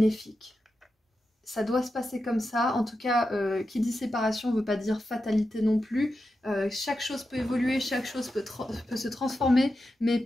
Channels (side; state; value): both; normal; correlation 0.90